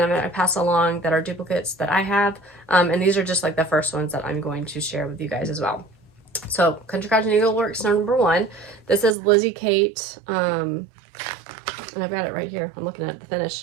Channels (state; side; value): drops out; left; at 9.2 s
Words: I'm going to pass along that are duplicates that I have. And these are just like the first ones that I'm going to share with you guys as well. So Country Cottage Needleworks number 1. This is Lizzie Kate. And I've got it right here. I'm looking at the